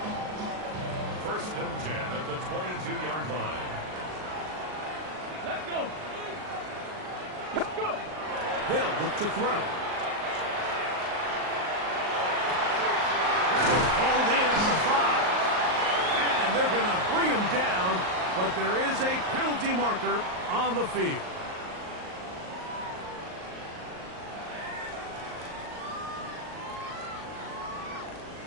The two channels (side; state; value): left; late; 38 ms